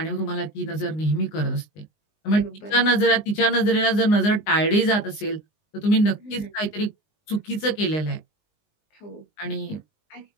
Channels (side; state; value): right; late; 19 ms